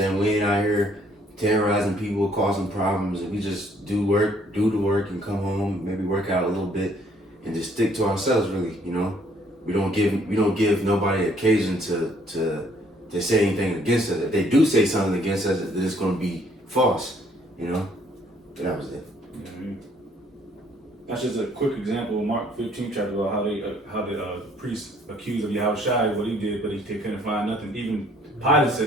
We ain't out here terrorizing people, causing problems, and we just do the work and come home, maybe work out a little bit and just stick to ourselves, really, you know? we don't give nobody occasion to say anything against us. If they do say something against us, then it's going to be false, you know. And that was it. Yeah, I mean, that's just a quick example of Mark 15 chapter about how the priest accused of Yahushua what he did, but they couldn't find nothing. Even Pilate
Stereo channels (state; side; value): normal; both; correlation 0.63